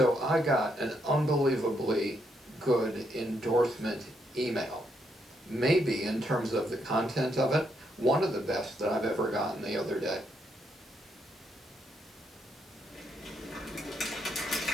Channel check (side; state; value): both; normal; correlation 0.77